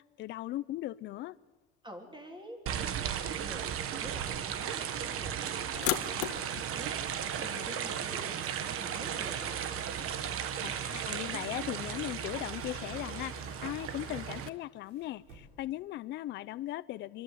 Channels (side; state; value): both; normal; correlation 0.08